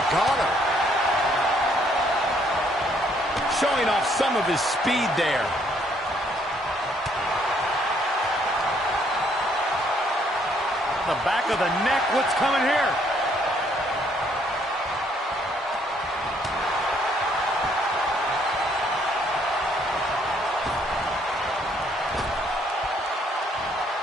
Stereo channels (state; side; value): normal; both; correlation 0.67